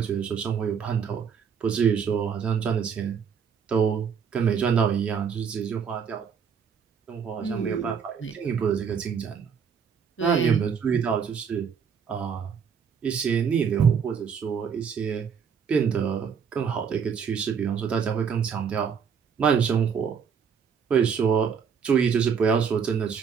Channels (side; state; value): left; quieter; 6.8 dB